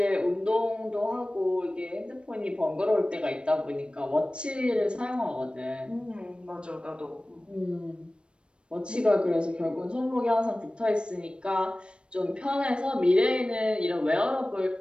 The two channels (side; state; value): left; late; 0.057 ms